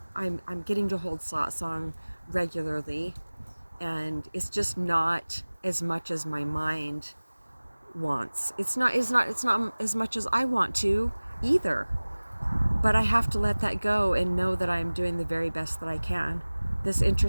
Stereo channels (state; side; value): inverted; both; correlation -1.00